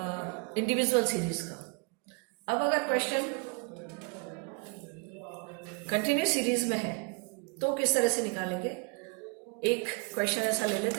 इंडिविजुअल सीरीज का। अब अगर क्वेश्चन कंटिन्यूस सीरीज में है तो किस तरह से निकालेंगे? एक क्वेश्चन ऐसा ले लेते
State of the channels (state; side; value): quieter; left; 31.7 dB